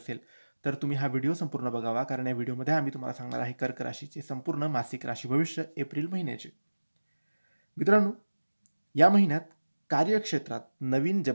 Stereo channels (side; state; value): both; inverted; correlation -1.00